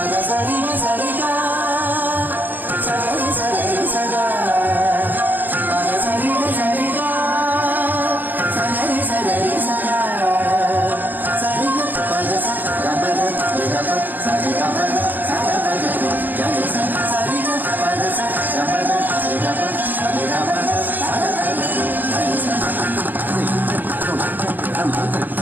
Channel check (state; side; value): late; left; 0.087 ms